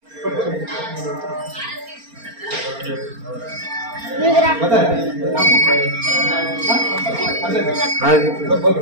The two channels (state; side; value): late; left; 4.3 ms